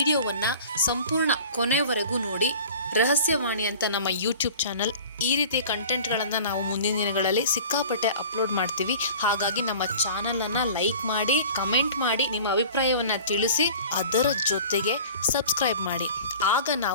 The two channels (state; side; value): inverted; both; correlation -0.42